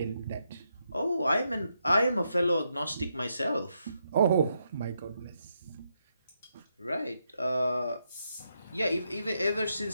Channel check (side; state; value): both; inverted; correlation -0.81